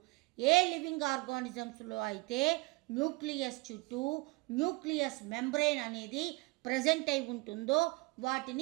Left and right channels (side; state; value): left; quieter; 24.6 dB